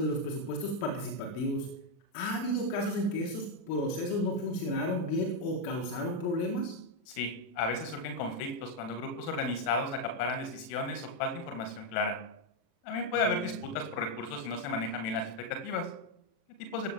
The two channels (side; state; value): right; late; 36 ms